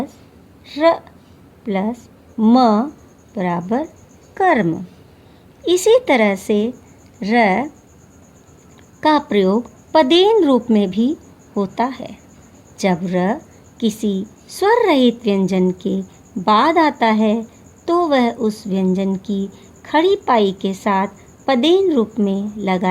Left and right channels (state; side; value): identical; both; correlation 1.00